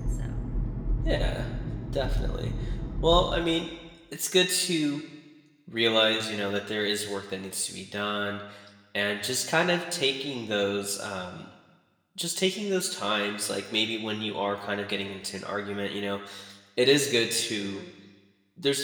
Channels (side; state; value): both; identical; correlation 1.00